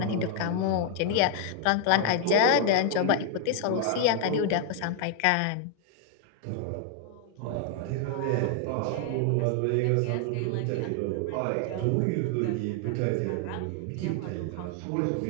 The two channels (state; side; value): different; both; correlation 0.00